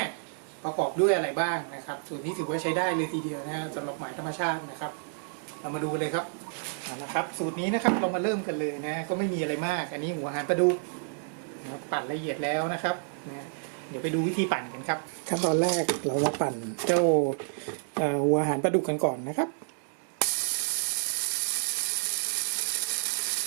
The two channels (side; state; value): left; silent; digital silence